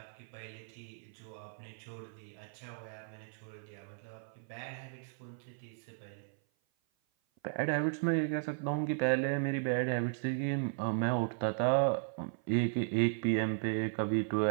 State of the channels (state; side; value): silent; left; 54 dB below the other